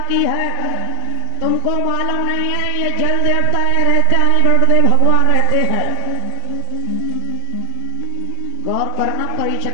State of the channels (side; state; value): both; different; correlation 0.00